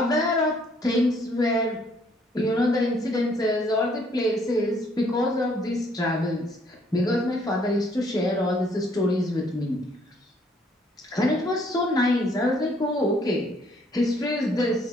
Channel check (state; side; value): normal; both; correlation 0.65